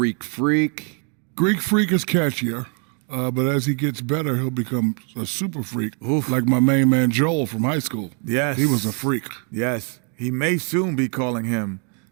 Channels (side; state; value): left; quieter; 38.0 dB